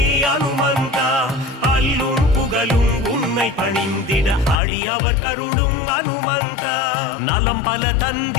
அனுமந்தா அல்லும் புகழும் உன்னை பணிந்திட அடியவர் கருளும் அனுமந்தா நலம் பல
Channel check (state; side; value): drops out; right; at 4.6 s